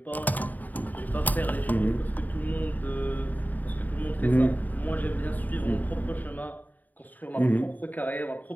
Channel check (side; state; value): right; late; 0.083 ms